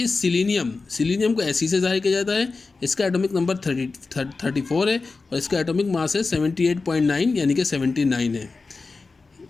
है सिलीनियम. सिलीनियम को एसी से जाहिर किया जाता है. इसका एटॉमिक नंबर 34 है, और इसका एटॉमिक मास है 78.9 यानी कि 79 है.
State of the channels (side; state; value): right; quieter; 4.0 dB